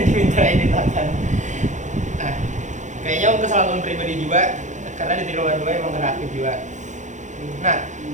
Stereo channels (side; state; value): left; late; 0.35 ms